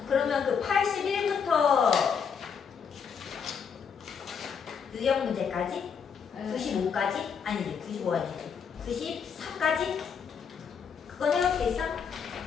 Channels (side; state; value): right; quieter; 6.7 dB